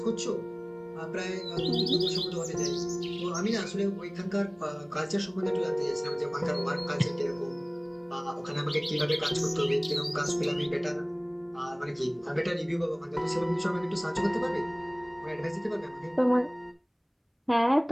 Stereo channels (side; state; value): both; identical; correlation 1.00